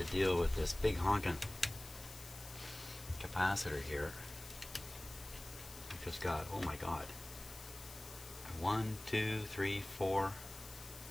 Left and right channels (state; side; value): noise; left; hiss, 15 dB below the sound